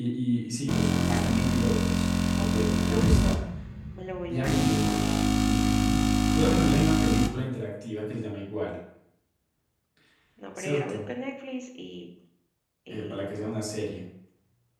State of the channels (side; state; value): both; identical; correlation 1.00